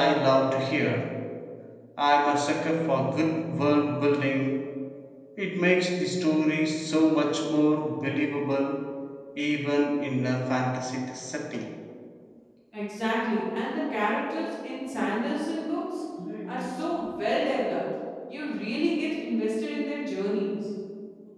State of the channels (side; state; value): both; identical; correlation 1.00